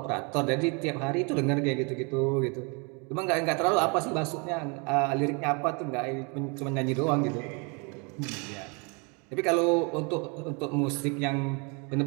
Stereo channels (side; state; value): left; quieter; 32.7 dB